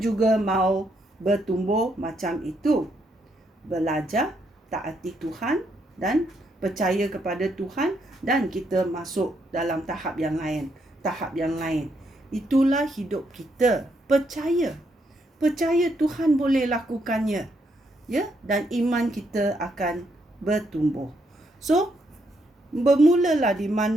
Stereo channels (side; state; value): both; normal; correlation 0.76